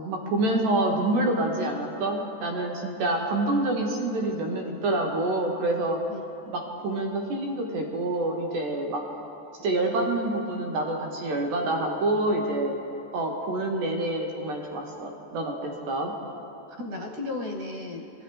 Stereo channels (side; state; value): left; late; 14 ms